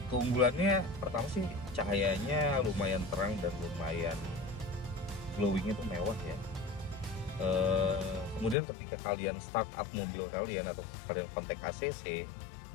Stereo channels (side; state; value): right; drops out; at 8.6 s